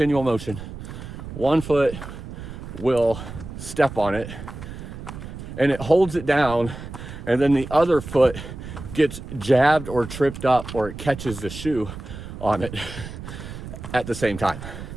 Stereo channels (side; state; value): right; noise; rumble, 11 dB below the sound